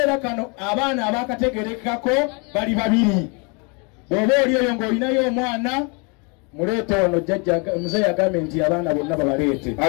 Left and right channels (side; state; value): right; quieter; 33.1 dB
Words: kano abaana abaakategerekako bali babiri. Bw'oba oli eyo ng'olinayo omwana muleete wano, jjajja muzeeyi agambye nti abaana bonna babaleete.